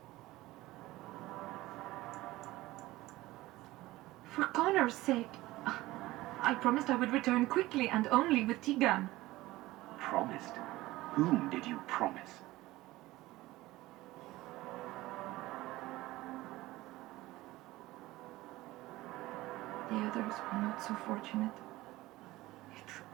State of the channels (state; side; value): quieter; left; 18.1 dB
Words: For Connor's sake, I promised I would return quickly and only with Tigan. Promised? Whom did you promise? The others were not so fortunate. It